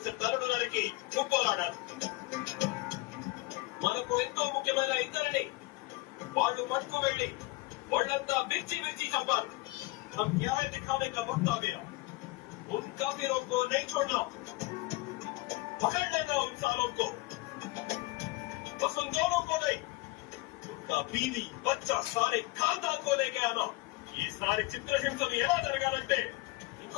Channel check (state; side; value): quieter; right; 21.7 dB